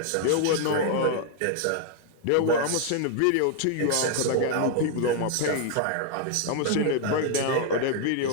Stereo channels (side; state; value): both; different; correlation 0.00